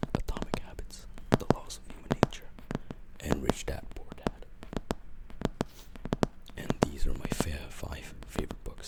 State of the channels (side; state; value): both; identical; correlation 1.00